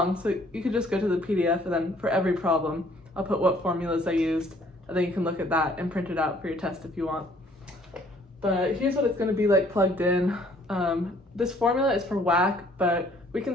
so you could just go to the PDF, and then for every problem I'll put what formulas I used, and then you can look at that and print it out for your test if you want. But here's what it's going to be like plugged in. This formula is for WACC, but we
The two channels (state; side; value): normal; both; correlation 0.60